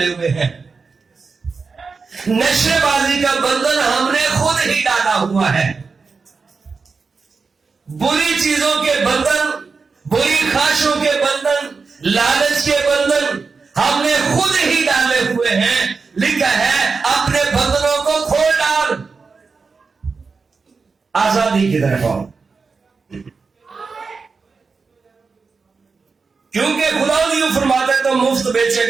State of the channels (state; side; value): quieter; left; 4.7 dB